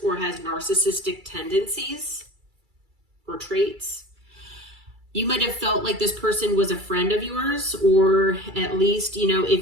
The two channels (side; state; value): left; late; 2.3 ms